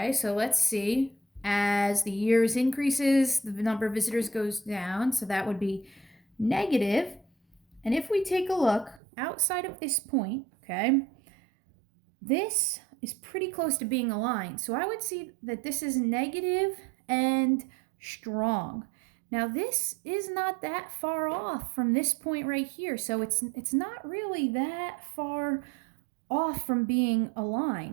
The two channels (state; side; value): drops out; left; at 9.0 s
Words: so let's see. As the years increases, the number of visitors goes down, so that would be negative. And if we take a look outside of this point, okay, this is pretty close to being aligned. So I would see that this is negative and strong. Now this is not that far off from this point right here. So it's not really that far off from being a